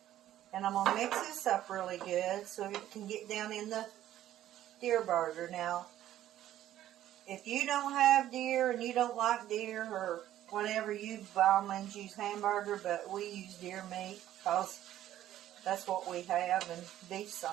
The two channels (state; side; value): quieter; left; 12.7 dB